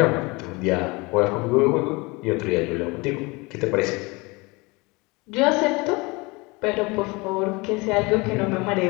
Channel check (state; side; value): quieter; right; 25.7 dB